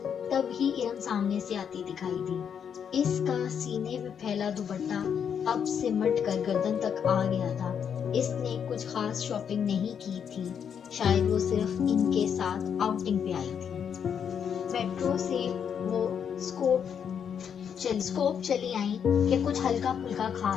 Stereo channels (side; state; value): right; quieter; 7.8 dB